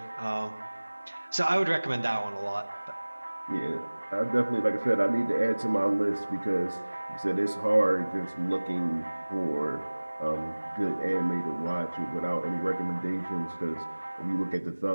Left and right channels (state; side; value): inverted; both; correlation -1.00